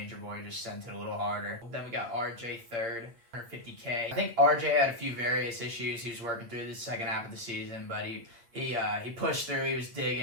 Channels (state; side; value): late; left; 8.6 ms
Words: just sent it a little harder. Then we got RJ 3rd. 150K. I think RJ had a few various issues he was working through the second half of the season, but he pushed through. He was